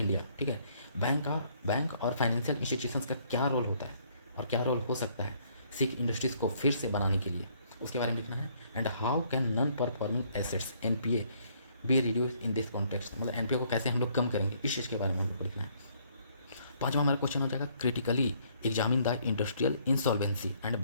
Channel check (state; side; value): inverted; both; correlation -0.65